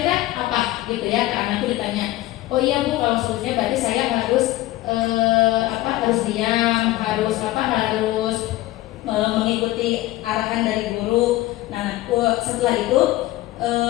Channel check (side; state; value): right; quieter; 16.9 dB